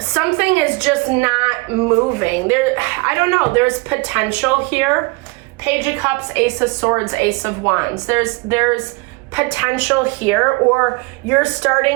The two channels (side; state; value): left; quieter; 27.5 dB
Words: is just not moving. I don't know, there's potential here. Page of Cups, Ace of Swords, Ace of Wands. There's potential here, or you're